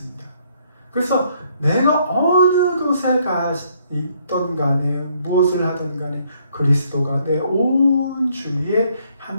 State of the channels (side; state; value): both; inverted; correlation -0.68